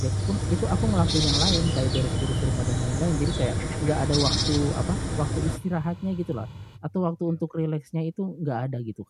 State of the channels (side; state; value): both; identical; correlation 1.00